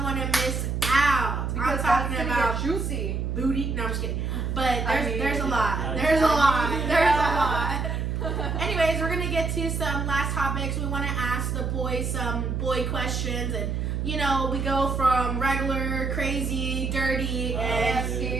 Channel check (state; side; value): noise; right; hum, 1 dB below the sound